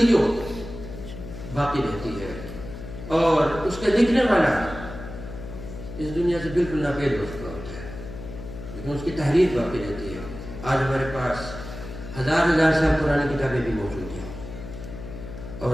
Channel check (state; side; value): noise; left; hum, 11 dB below the sound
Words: باقی رہتی ہے، اور اس کا لکھنے والا اس دنیا سے بالکل ناپید ہو چکا ہوتا ہے، لیکن اس کی تحریر باقی رہتی ہے. آج ہمارے پاس ہزار سال پرانی کتابیں بھی موجود ہیں،